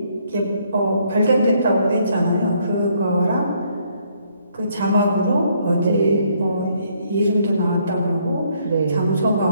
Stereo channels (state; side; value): inverted; both; correlation -0.68